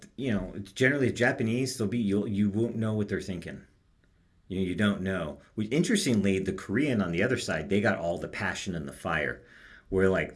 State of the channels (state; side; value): identical; both; correlation 1.00